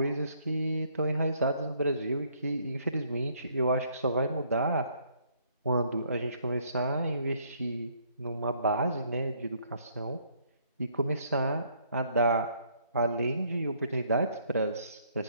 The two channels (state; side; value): inverted; both; correlation -0.66